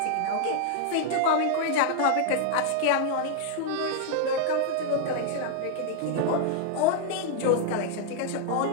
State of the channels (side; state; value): both; different; correlation 0.00